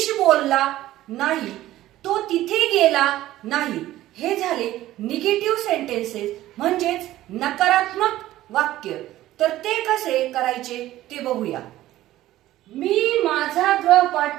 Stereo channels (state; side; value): quieter; left; 14.9 dB